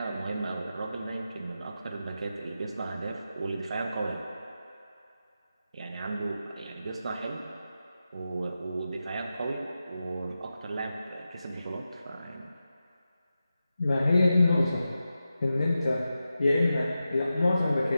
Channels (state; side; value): inverted; both; correlation -0.91